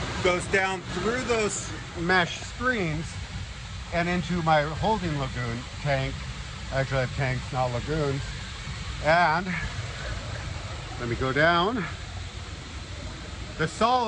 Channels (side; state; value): both; identical; correlation 1.00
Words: goes down through those mesh screens and into my holding lagoon tank. Actually, I have tanks, not lagoons. And let me go down. The